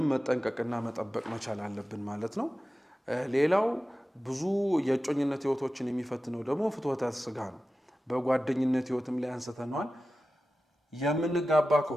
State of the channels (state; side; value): normal; both; correlation 0.94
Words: መጠንቀቅና መጠበቅ መቻል አለብን ማለት ነው። ሌላው ብዙ የእጮኝነት ህይወቶችን የሚፈትነው ደግሞ ፍትወተ ስጋ ነው። በጓደኝነት ህይወትም ላይ አንስተናል። የምንጋባ